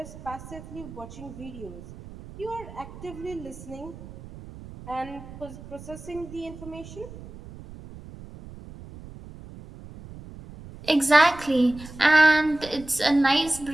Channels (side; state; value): right; noise; rumble, 16 dB below the sound